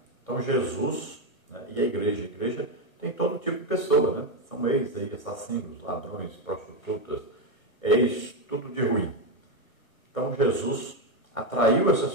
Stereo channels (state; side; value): late; right; 1.2 ms